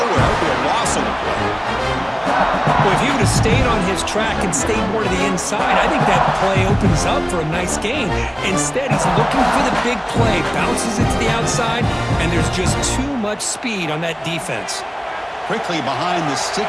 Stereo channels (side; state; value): both; identical; correlation 1.00